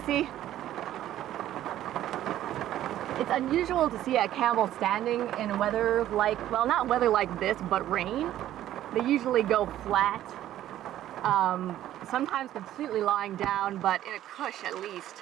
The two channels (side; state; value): left; quieter; 12.7 dB